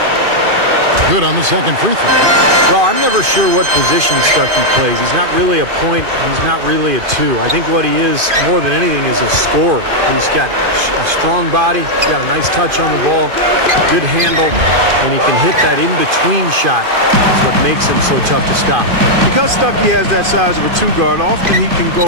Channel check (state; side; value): late; left; 2.5 ms